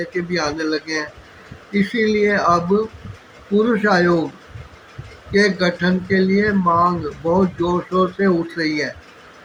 के भी आने लगे हैं। इसीलिए अब पुरुष आयोग के गठन के लिए मांग बहुत जोर शोर से उठ रही है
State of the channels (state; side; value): identical; both; correlation 1.00